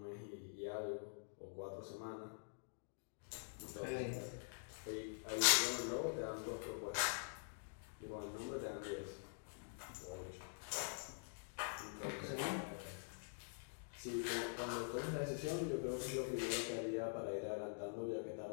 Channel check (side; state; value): right; silent; digital silence